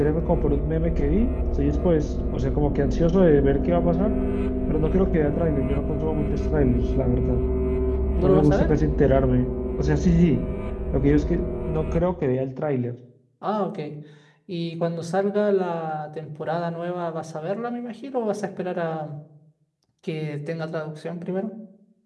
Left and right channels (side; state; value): both; identical; correlation 1.00